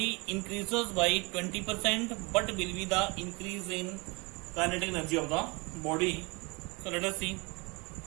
increases by 20% but will be the increase in kinetic energy of the body. So let us see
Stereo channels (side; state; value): left; quieter; 27.9 dB